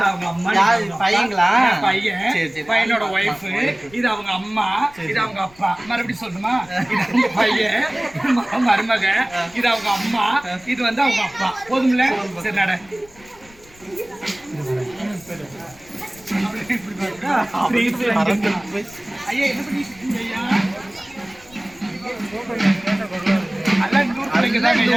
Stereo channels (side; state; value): left; noise; rumble, 26 dB below the sound